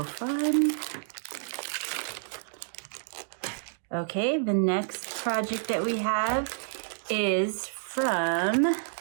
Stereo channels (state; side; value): silent; left; digital silence